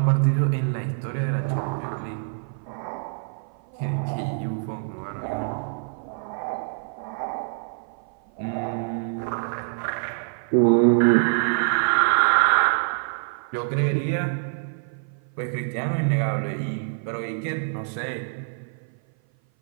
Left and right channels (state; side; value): silent; left; 56 dB below the other